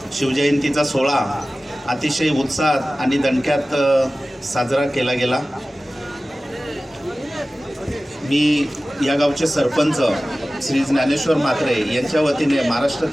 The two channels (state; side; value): normal; both; correlation 0.96